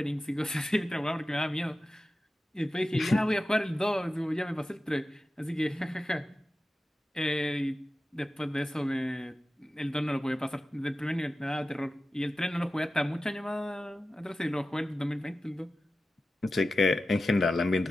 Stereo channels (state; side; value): normal; both; correlation 0.94